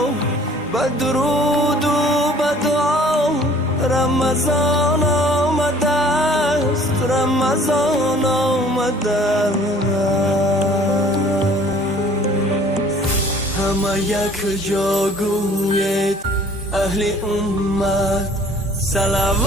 به درود و به دعا رمضان آمده است، رمضان آمده است. همه یک جا گوید اهل امت صلوات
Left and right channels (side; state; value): both; normal; correlation 0.53